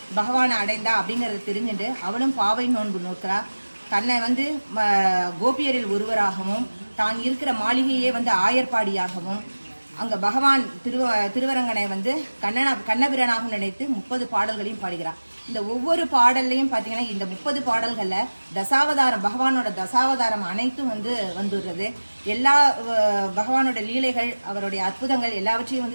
பகவானை அடைந்தா அப்படிங்கிறத தெரிஞ்சுட்டு அவளும் பாவை நோன்பு நோக்கிறா. தன்னை வந்து கோபியரில் ஒருவராகவும் தான் இருக்கிற மாளிகையே வந்து ஆயர்பாடியாகவும் அங்கே பகவான் திருவரங்கனை வந்து கண்ணபிரானாகவும் நினைத்து 30 பாடல்களையும் பாடுகிறார். இந்த ஒவ்வொரு பாடல்லையும் பார்த்தீங்கன்னா இந்த 30 பாடல்களில் தசாவதாரம், பகவானோட தசாவதாரம் அனைத்தும் வந்து வந்துடுறது. எல்லா பகவானோட லீலைகள், அவருடைய அற்புதங்கள் எல்லாவற்றையும்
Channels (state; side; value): inverted; both; correlation -1.00